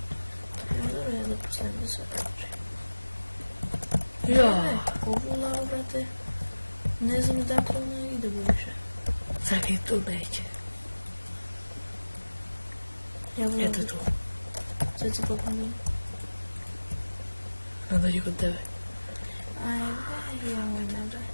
Možda ja da postavim da sve kaže. Ja. Ovu lavu, brate. Ne znam dakle ona ide buduće. Čekaj, tu neće. Eto tu. Sad si popomnim. Ne dođi kod tebe. Ajde, ja moj nabaj.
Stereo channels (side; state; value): both; inverted; correlation -1.00